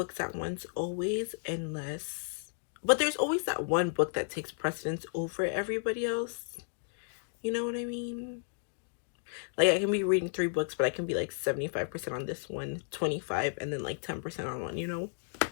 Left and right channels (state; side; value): silent; right; digital silence